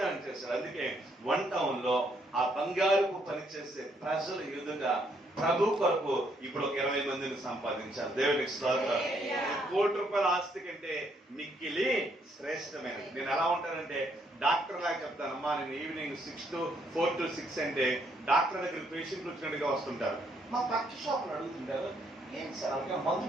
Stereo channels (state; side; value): normal; both; correlation 0.71